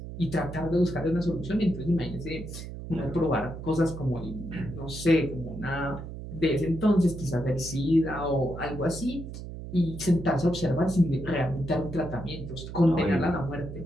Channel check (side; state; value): right; noise; hum, 10 dB below the sound